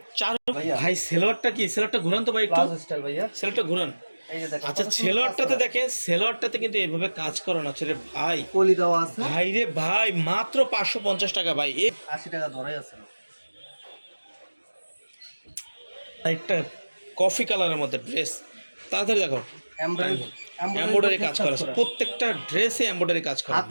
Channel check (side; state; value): both; inverted; correlation -1.00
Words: ভাই সেলোয়ারটা কি, সেলোয়ারটা ঘুরান তো ভাই একটু, প্লাজো স্টাইল ভাইয়া, সেলোয়ারটা ঘুরান। এই যে দেখেন। আচ্ছা, সেলোয়ারটাতে দেখেন, সেলোয়ারটাতে কিন্তু এইভাবে কাজ করানো আছে রে ভাই, কলি দেওয়া আছে ভাই রে ভাই, মাত্র 550 টাকা ভাই। 80 টাকা ধরাই আছে। একটা কফি কালারের মধ্যে ড্রেস, তাড়াতাড়ি দেখো, এমব্রয়ডারি এমব্রয়ডারি কাজ করা আছে, প্রত্যেকটা ড্রেসে এমব্রয়ডারি কাজ করা।